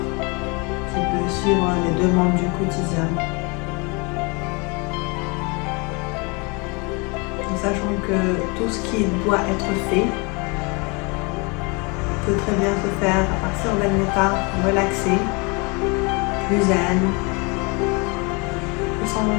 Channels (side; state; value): right; quieter; 30.0 dB